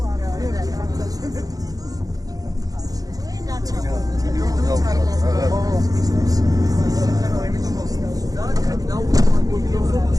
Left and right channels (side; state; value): left; late; 0.18 ms